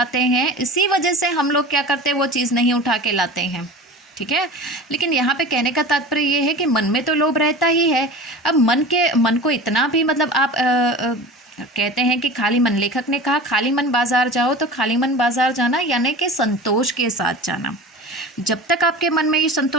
हैं, इसी वजह से हम लोग क्या करते हैं, वो चीज़ नहीं उठा के लाते हैं, ठीक है। लेकिन यहाँ पे कहने का तात्पर्य ये है कि मन में तो लोभ रहता ही है। अब मन को इतना भी मतलब आप कहते हैं कि खाली मन, लेखक ने कहा खाली मन बाज़ार जाओ, तो खाली मन बाज़ार जाना यानी कि संतोष के साथ जाना। जब तक आपके मन में ये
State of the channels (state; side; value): normal; both; correlation 0.35